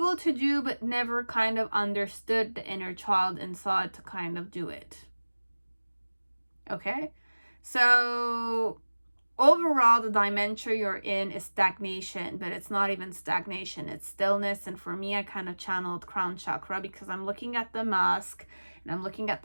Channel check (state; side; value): inverted; both; correlation -1.00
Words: to do, but never kind of understood the inner child inside to kind of do it. Okay, so overall, the dimension you're in is stagnation, but it's not even stagnation, it's stillness. And for me, I kind of channeled crown chakra, because I'm looking at the mask and I'm looking at